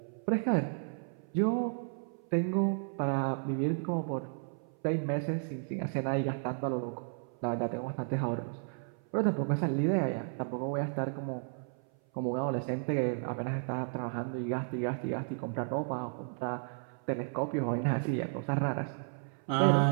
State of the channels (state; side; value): silent; left; 55 dB below the other